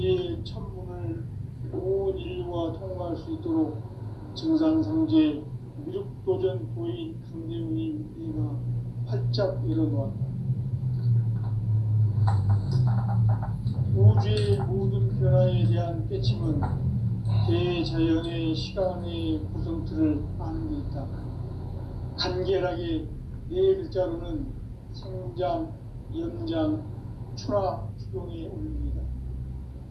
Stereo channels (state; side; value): identical; both; correlation 1.00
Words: 첫 문을 온 인류가 통과할 수 있도록 증산상제 미륵도전 도인 강대훈이 내가 활짝 열어놓았다. 우주의 모든 변화에 대한 깨침은 대자연의 시간의 구성틀을 아는 데 있다. 간결하게 네 글자로는 생장, 연장, 추나 추동에 올립니다.